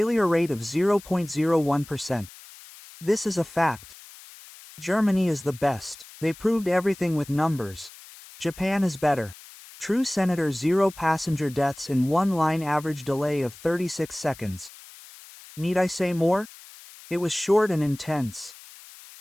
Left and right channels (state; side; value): noise; left; hiss, 19 dB below the sound